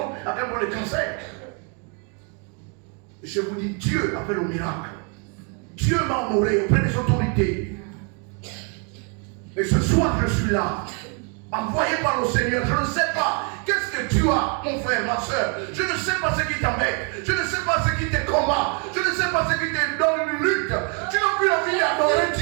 avec un problème de cancer. Et je vous dis, Dieu a fait le miracle. Dieu m'a honoré auprès des autorités. Et ce soir, je suis là, envoyé par le Seigneur. Je ne sais pas qu'est-ce que tu as, mon frère, ma soeur. Je ne sais pas ce qui t'embête. Je ne sais pas ce qui te combat. Je ne sais pas ce qui te donne une lutte. Tu n'as plus envie d'adorer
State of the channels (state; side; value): quieter; left; 36.2 dB